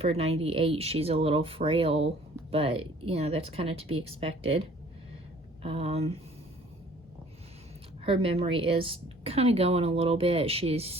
98, she's a little frail, but, you know, that's kind of to be expected. Her memory is kind of going a little bit. She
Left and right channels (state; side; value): normal; both; correlation 0.54